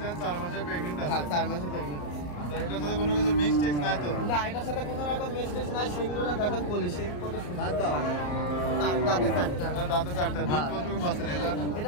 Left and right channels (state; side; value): late; right; 34 ms